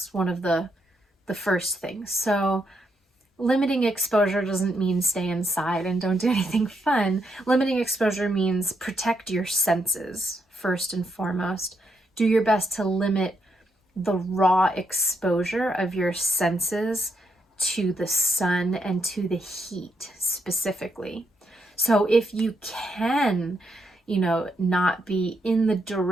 one of the first things. So limiting exposure doesn't mean stay inside and don't do anything fun. Limiting exposure means protect your senses first and foremost. Do your best to limit the raw exposure of your senses to the sun and to the heat specifically. So if you can, not be in the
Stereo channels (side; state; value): both; normal; correlation 0.79